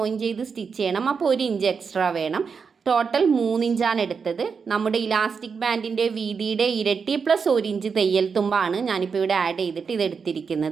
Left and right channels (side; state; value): left; quieter; 5.7 dB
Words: ചെയ്ത് സ്റ്റിച്ച് ചെയ്യണം. അപ്പോൾ 1 ഇഞ്ച് എക്സ്ട്രാ വേണം. ടോട്ടൽ 3 ഇഞ്ചാണ് എടുത്തത്. നമ്മുടെ ഇലാസ്റ്റിക് ബാൻഡിൻ്റെ വീതിയുടെ ഇരട്ടി പ്ലസ് 1 ഇഞ്ച് തയ്യൽ തുമ്പാണ് ഞാനിപ്പോൾ ഇവിടെ ആഡ് ചെയ്തിട്ട്